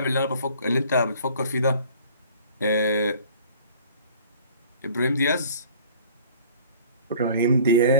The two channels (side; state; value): both; inverted; correlation -0.49